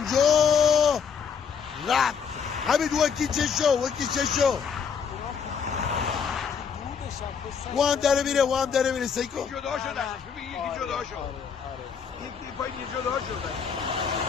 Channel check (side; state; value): right; quieter; 6.6 dB